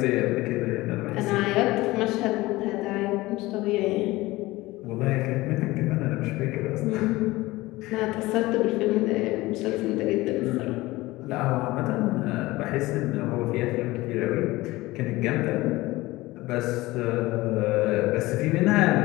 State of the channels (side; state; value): right; quieter; 19.4 dB